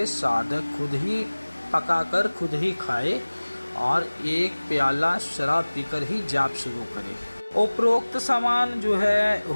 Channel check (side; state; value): both; inverted; correlation -1.00